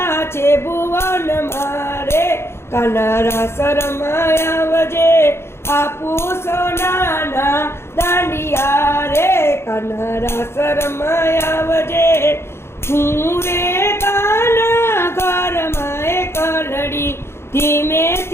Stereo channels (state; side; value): late; right; 0.12 ms